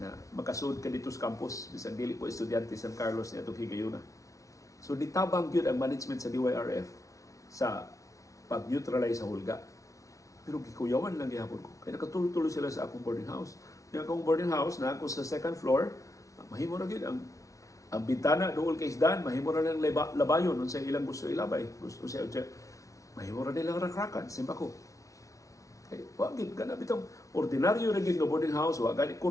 makasud ka dito sa campus bisan dili ko estudyante San Carlos ni atong higayuna. So nitabang gyud ang management sa DYRF sa pag-neutralize sa hulga. Pero gikuyawan lang gihapon ko. Kaya nakatuloy-tuloy sila sa akong boarding house. Yung akong boarding house na ako sa second floor, mahimo na gyud ang bintana dool kay isdan, mahimo na lang labayon unsa ilang gusto ilabay. Gusto siya mahimo na nilang rakrakan, simba ko. Kay wa gid kana bitong ordinaryo ra gid nga boarding house, wa gani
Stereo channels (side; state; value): right; late; 0.16 ms